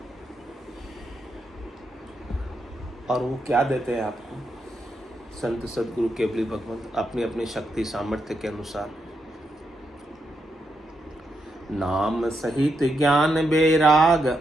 और वो क्या देते हैं आपको, संत सदगुरु केवली भगवंत अपनी अपनी शक्ति सामर्थ्य के अनुसार। नाम सहित ज्ञान बेराग,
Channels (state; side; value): normal; both; correlation 0.82